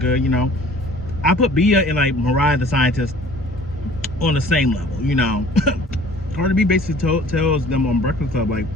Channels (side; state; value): both; normal; correlation 0.50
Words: you know. I put Bia and like Mariah the Scientist on the same level, you know. Cardi B basically tells them on Breakfast Club, like,